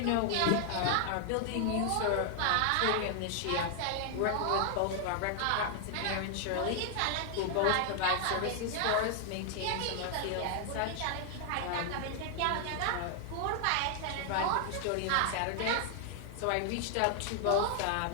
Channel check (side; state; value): both; different; correlation 0.00